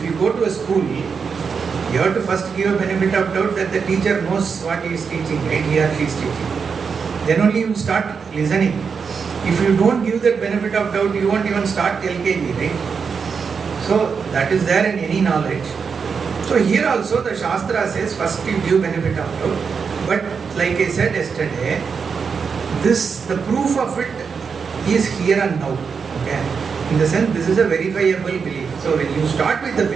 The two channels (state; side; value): quieter; left; 5.8 dB